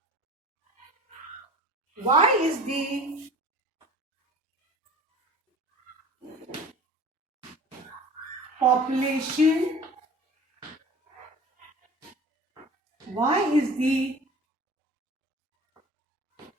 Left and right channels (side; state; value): both; normal; correlation 0.42